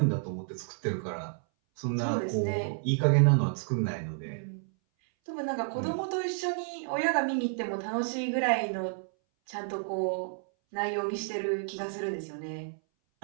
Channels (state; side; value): silent; left; 57 dB below the other